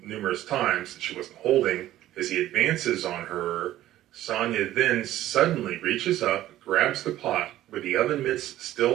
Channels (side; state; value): left; quieter; 14.0 dB